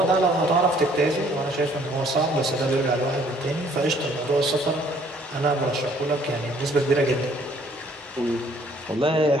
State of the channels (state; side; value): normal; both; correlation 0.61